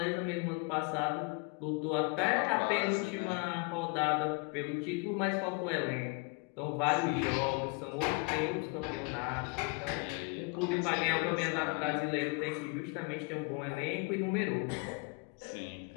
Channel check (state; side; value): quieter; right; 30.9 dB